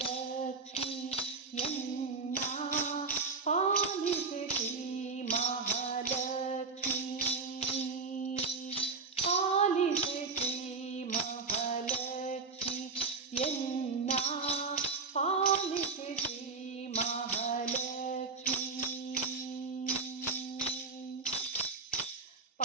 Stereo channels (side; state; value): left; quieter; 4.5 dB